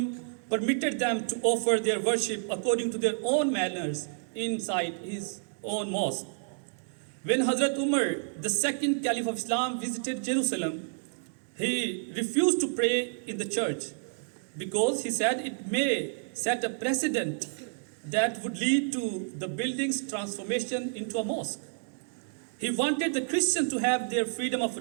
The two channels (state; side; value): silent; left; 58 dB below the other